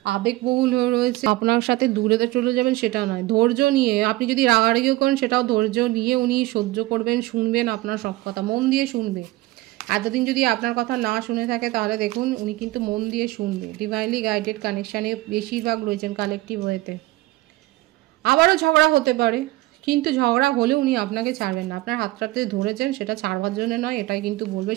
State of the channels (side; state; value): left; quieter; 18.7 dB